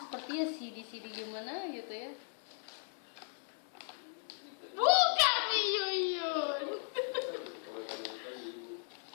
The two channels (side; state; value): right; silent; 53 dB below the other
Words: CD gimana gitu ya. Buka Yuyun.